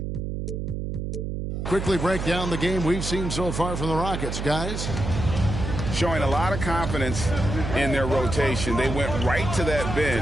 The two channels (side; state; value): right; noise; hum, 4 dB below the sound